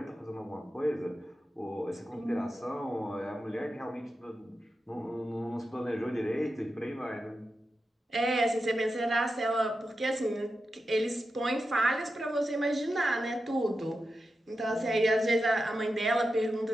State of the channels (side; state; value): both; normal; correlation 0.90